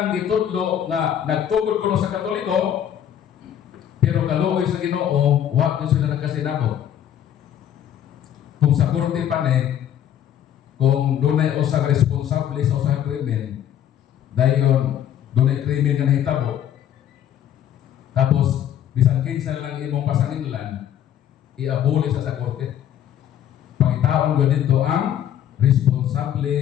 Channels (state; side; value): quieter; right; 10.3 dB